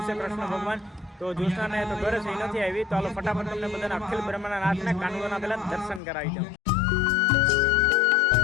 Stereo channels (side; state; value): right; drops out; at 6.0 s